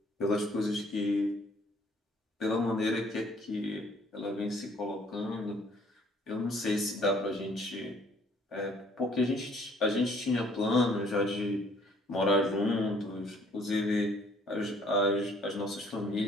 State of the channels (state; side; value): normal; both; correlation 0.60